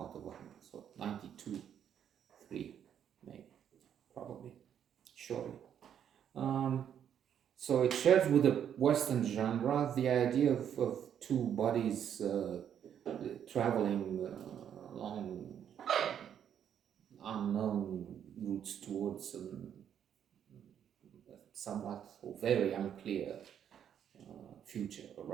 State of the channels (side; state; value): left; quieter; 9.1 dB